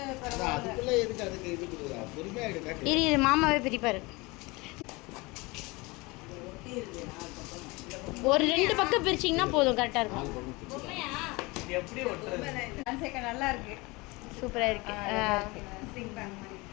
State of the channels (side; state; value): right; quieter; 24.3 dB